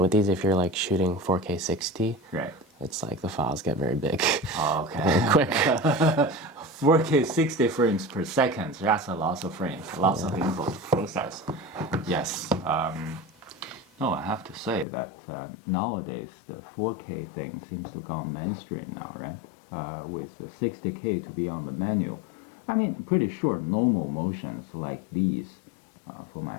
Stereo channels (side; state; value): right; drops out; at 14.9 s